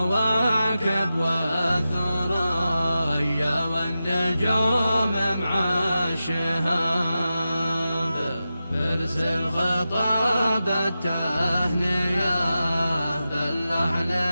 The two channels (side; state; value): both; inverted; correlation -0.92